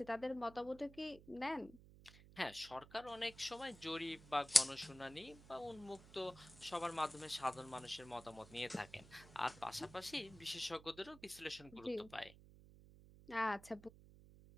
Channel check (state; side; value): noise; right; hum, 19 dB below the sound